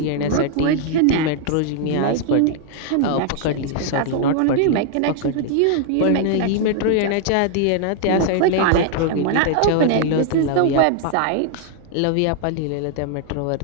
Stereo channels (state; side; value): different; both; correlation 0.00